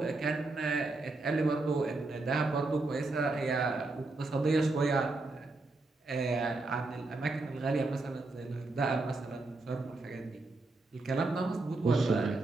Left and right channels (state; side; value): quieter; left; 3.3 dB